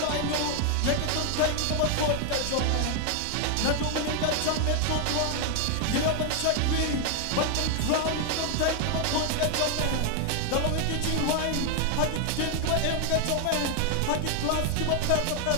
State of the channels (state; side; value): different; both; correlation 0.00